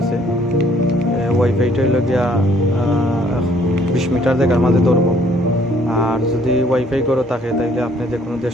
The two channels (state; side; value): normal; both; correlation 0.62